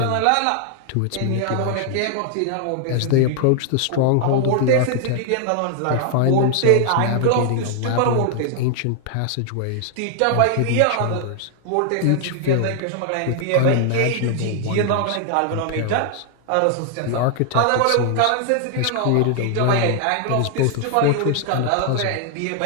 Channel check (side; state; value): both; different; correlation 0.00